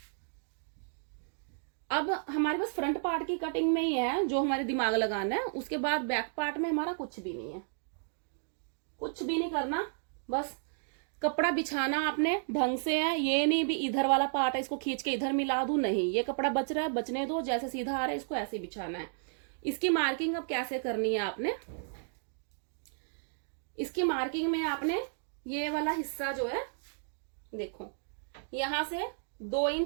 अब हमारे पास फ्रंट पार्ट की कटिंग में ही है जो हमारे दिमाग लगाना है, उसके बाद बैक पार्ट में हमारा कुछ भी नहीं है, कुछ भी नहीं करना, बस कपड़ा बिछाना आपने ढंग से है। ये नहीं भी इधर वाला पार्ट है इसको खींच के इधर मिला दूं, नहीं, ये कपड़ा बच रहा है बचने दो, जैसे सीधा आ रहा है इसको ऐसे बिछाना है। इसकी मार्किंग अब कैसे करनी है आपने, इसकी मार्किंग में आपने ये वाला हिस्सा जो है देखो, यहां से 2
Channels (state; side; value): silent; left; digital silence